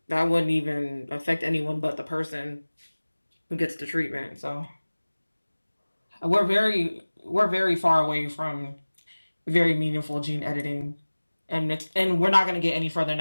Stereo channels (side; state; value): both; inverted; correlation -1.00